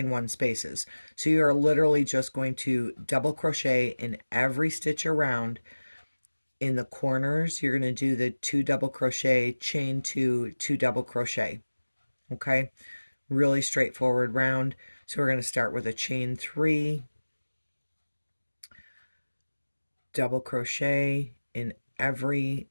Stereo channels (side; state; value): both; inverted; correlation -1.00